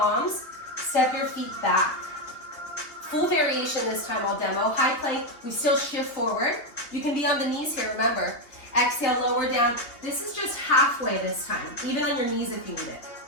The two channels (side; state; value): right; late; 3.1 ms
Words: step your feet back. Full variation this time, I'll demo. High plank, we still shift forward. You can be on the knees here, remember. Exhale, lower down. This is just halfway this time, even on your knees if you need it.